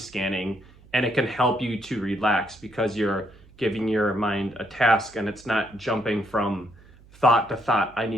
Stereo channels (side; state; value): right; noise; hum, 25 dB below the sound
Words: and it can help you to relax because you're giving your mind a task and it's not jumping from thought to thought. I